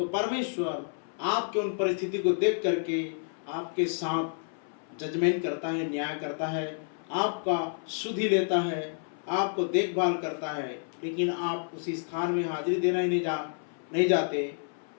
परमेश्वर आपके उन परिस्थिति को देख करके आपके साथ जजमेंट करता है, न्याय करता है, आपका सुधि लेता है, आपको देखभाल करता है। लेकिन आप उसी स्थान में हाजिरी देना ही नहीं जाते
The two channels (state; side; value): silent; right; 58 dB below the other